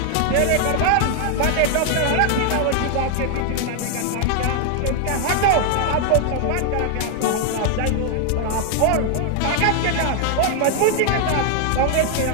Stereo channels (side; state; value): both; different; correlation 0.00